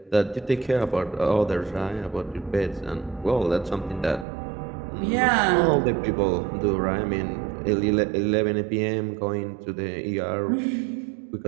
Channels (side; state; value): left; drops out; at 4.2 s